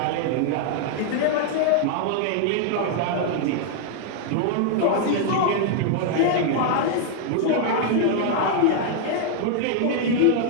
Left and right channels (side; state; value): both; different; correlation 0.00